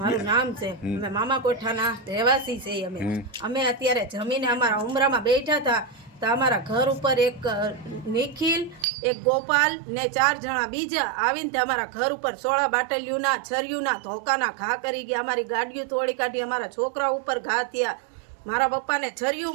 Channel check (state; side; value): drops out; left; at 8.8 s